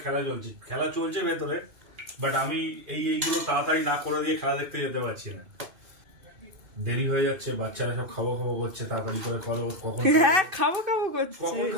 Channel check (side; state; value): left; late; 2.5 ms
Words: খেলা চলছে ভেতরে। বাট আমি এইগুলো তাড়াতাড়ি না করে দিয়ে খেলা দেখতে যেতে পারছি না, দেরি হয়ে যাচ্ছে। বাচ্চারা সব খাবো খাবো করছে, তাড়াতাড়ি করে করো। কখন হ্যাঁ খাবো খাবো করছে,